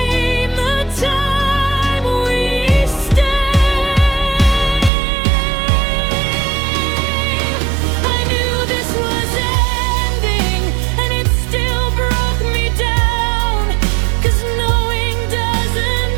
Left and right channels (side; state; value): left; drops out; at 4.9 s